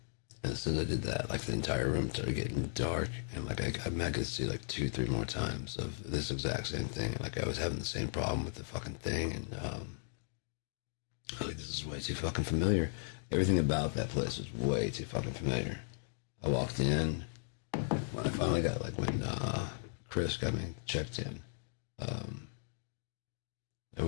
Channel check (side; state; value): right; silent; digital silence